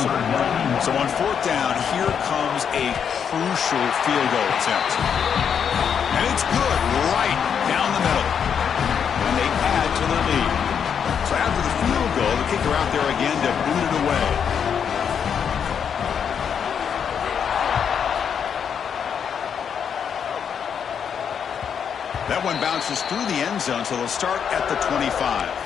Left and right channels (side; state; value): right; quieter; 7.5 dB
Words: So on 4th down, here comes a crucial field goal attempt. And it's good right down the middle. And they add to their lead. So after the field goal, the kicker out there again to boot it away. That one bounces through the end zone, so they'll start at the 25.